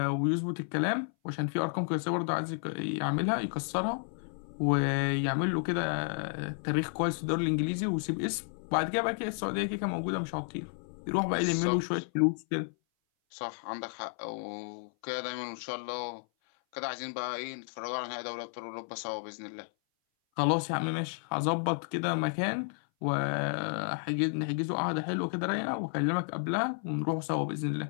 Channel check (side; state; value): right; silent; 56 dB below the other